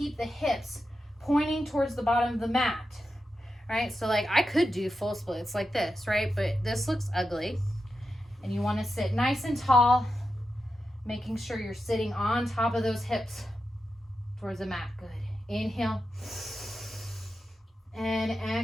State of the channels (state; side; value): normal; both; correlation 0.89